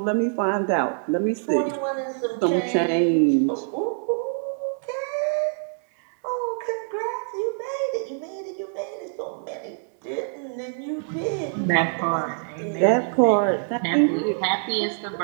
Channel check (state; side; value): silent; left; digital silence